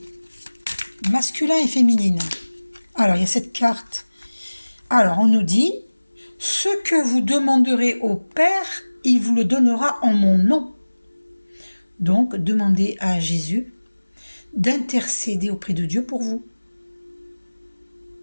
masculin et féminine, alors il y a cette carte. Alors, on nous dit, ce que vous demanderez au Père, il vous le donnera en mon nom. Donc, demandez à Jésus d'intercéder auprès de Dieu pour vous.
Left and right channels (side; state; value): both; inverted; correlation -1.00